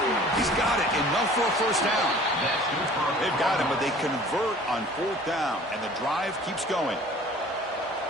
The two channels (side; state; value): both; normal; correlation 0.48